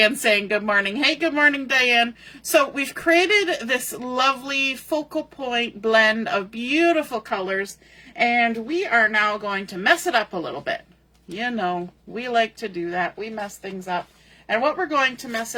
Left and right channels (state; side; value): identical; both; correlation 1.00